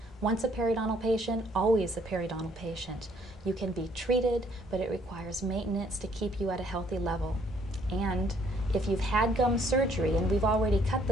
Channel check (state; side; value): normal; both; correlation 0.65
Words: Once a periodontal patient, always a periodontal patient. You can be treated, but it requires maintenance to keep you at a healthy level. And if you've had gum surgery and we've already cut